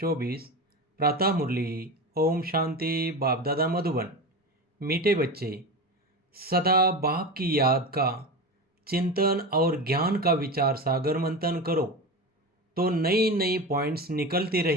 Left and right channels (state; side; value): normal; both; correlation 0.25